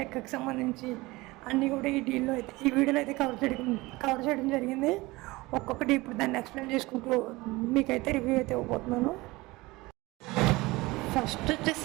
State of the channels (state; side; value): quieter; left; 21.4 dB